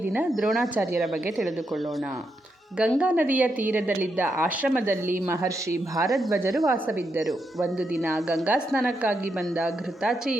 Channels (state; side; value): normal; both; correlation 0.82